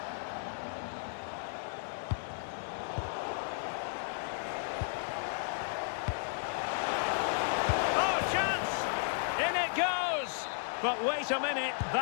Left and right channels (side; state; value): right; silent; 55 dB below the other